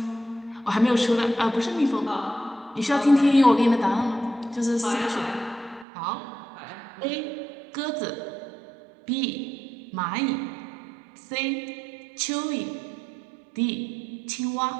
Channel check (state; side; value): drops out; left; at 5.9 s